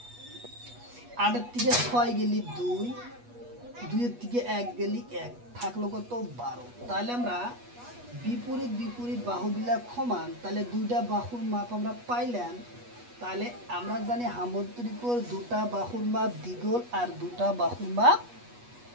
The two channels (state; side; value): late; left; 8.3 ms